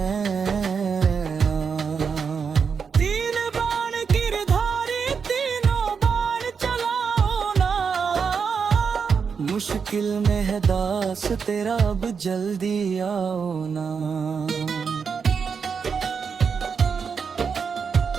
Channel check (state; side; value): quieter; left; 6.0 dB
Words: तीन बाण गिरधारी तीनों बाण चलाओ ना, मुश्किल में है दास तेरा अब जल्दी आओ ना।